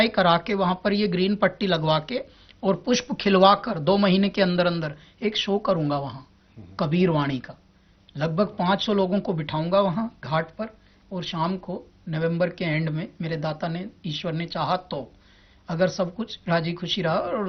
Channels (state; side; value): identical; both; correlation 1.00